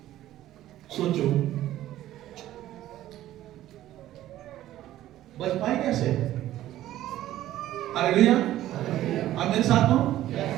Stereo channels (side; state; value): left; quieter; 13.8 dB